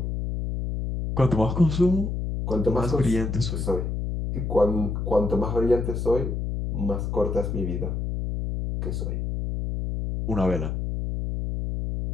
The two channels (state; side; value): noise; left; hum, 2 dB below the sound